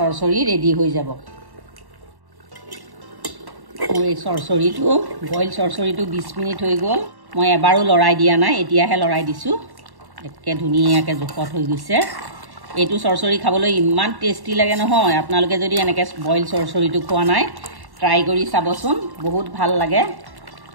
ৰেডি হৈ যাব। মোৰ এই চৰচৰিটো, বইল চৰচৰিটো 20 মিনিট হৈ গ'ল। মই এবাৰো লৰাই দিয়া নাই, এতিয়াহে লৰাই দিছোঁ। একে ধুনীয়াকৈ জোখত হৈ গৈছে। এইটো চৰচৰি খাবলৈ ইমান টেষ্টি লাগে নহয়। আপোনালোকে যদি এনেকৈ বইল চৰচৰিটো খোৱা নাই, ট্ৰাই কৰি চাবচোন, বহুত ভাল লাগে।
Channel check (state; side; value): late; left; 1.1 ms